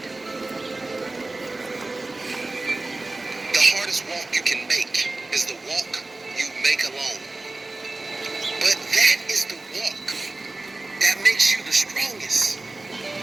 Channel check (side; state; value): left; quieter; 3.1 dB